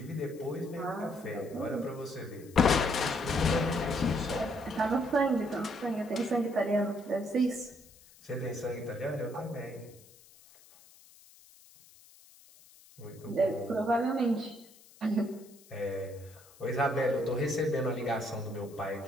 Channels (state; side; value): noise; left; hiss, 24 dB below the sound